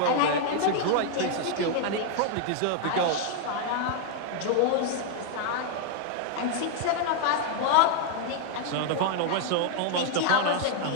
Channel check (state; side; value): different; both; correlation 0.00